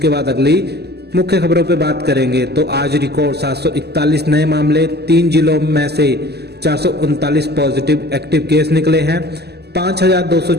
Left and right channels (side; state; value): left; late; 0.48 ms